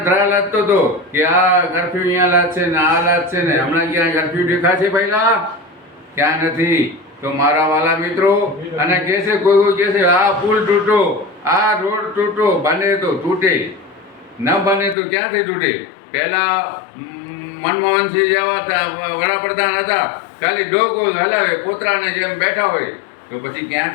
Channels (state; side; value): drops out; right; at 15.0 s